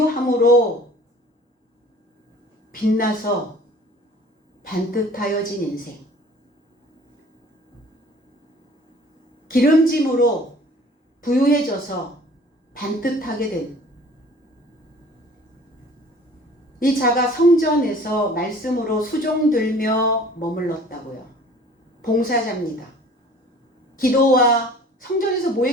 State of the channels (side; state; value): both; normal; correlation 0.49